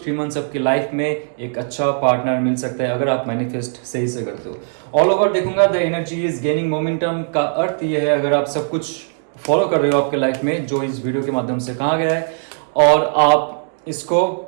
months आपकी लाइफ में एक अच्छा पार्टनर मिल सकता है, अगर आप मैनिफेस्ट सही से करते हो। ऑल ओवर देखूंगा, the energy is gaining momentum का अर्थ ये है, अगर आप सब कुछ फॉलो कर रहे हो आपके लाइफ में जो इस वीडियो के माध्यम से कहा गया है, और आप इसको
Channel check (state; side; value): silent; left; digital silence